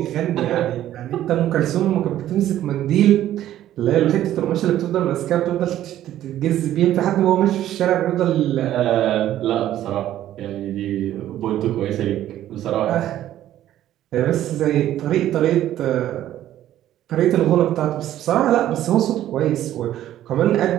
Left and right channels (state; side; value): quieter; left; 12.6 dB